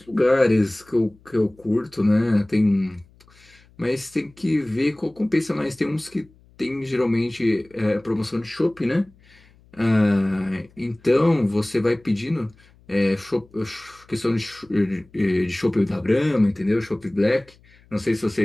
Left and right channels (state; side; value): noise; left; hum, 29 dB below the sound